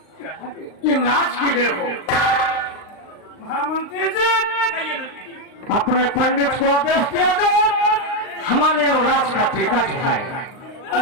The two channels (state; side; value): late; right; 39 ms